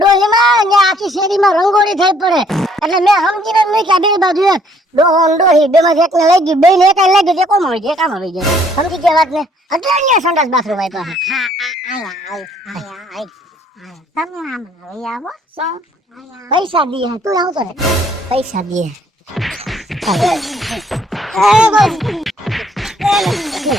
ડોહીમાં ને આખી શેરીમાં રંગોળી થઈ પડે. એટલે મેં સમજીને મૂક્યા બે બાજુ એક ડોહો ને ડોહી બે માંથી એકને લઈ ગયું, બે ને એક લઈ ગયું, કોમ આવી જાય, કામ આવી જાય. સમજી ગયા વાત ને? એટલે અહીંયા સંડાસ બાથરૂમ આપ્યા. હા આયા તમે આમ લઈ આવો શું પૈસા દીએ, તું આવતો ને પૈસા દીએ.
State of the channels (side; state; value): both; normal; correlation 0.63